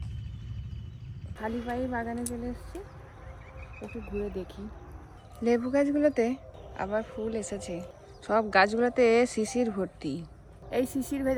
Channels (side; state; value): both; identical; correlation 1.00